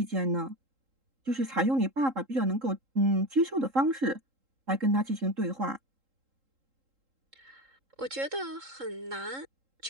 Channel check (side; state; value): left; late; 3.8 ms